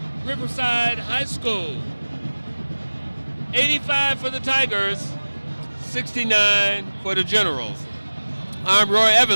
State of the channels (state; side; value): inverted; both; correlation -1.00